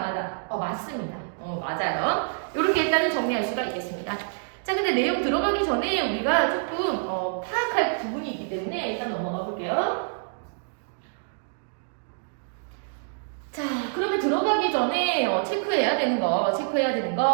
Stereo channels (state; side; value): silent; left; digital silence